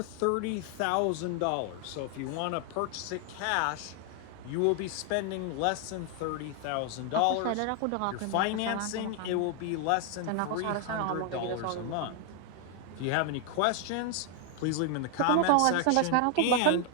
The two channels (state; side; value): different; both; correlation 0.00